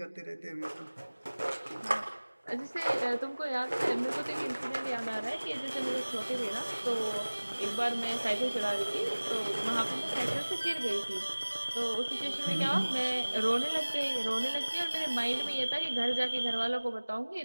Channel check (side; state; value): both; inverted; correlation -1.00